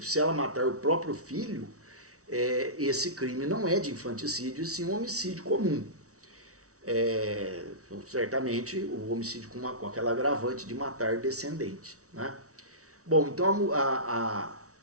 se ela matar o próprio filho, esse crime não é de infanticídio, e sim um homicídio comum. Certamente o homicídio com aquela agravante de matar descendente, né? Bom, então a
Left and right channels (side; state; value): left; late; 0.65 ms